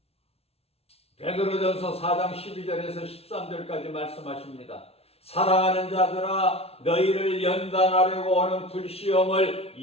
베드로전서 4장 12절에서 13절까지 말씀하십니다. 사랑하는 자들아 너희를 연단하려고 오는 불시험을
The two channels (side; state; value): right; late; 0.30 ms